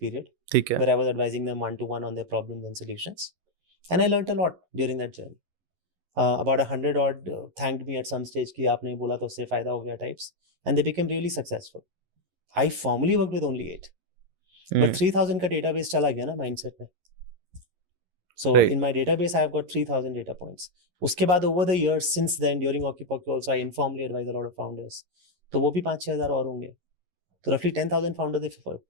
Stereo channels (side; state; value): left; late; 11 ms